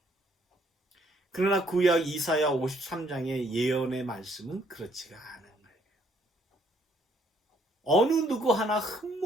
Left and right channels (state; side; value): normal; both; correlation 0.67